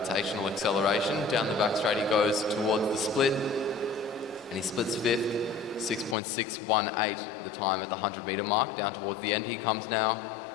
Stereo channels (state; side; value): drops out; right; at 6.2 s